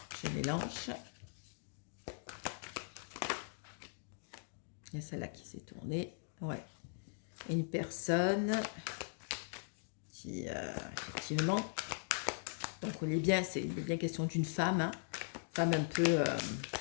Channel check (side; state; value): right; silent; digital silence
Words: je mélange. Il y a celle-là qui s'est tournée. Ouais. Une personne qui, effectivement, donc il est bien question d'une femme, hein, femme un peu...